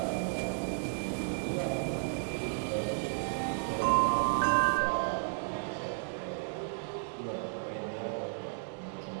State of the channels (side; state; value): left; silent; digital silence